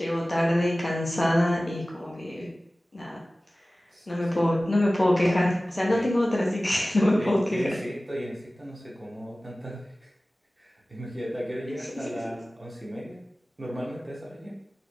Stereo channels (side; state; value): both; normal; correlation 0.97